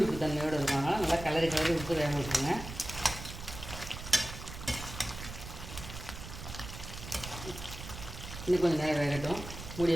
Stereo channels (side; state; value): right; noise; rumble, 10 dB below the sound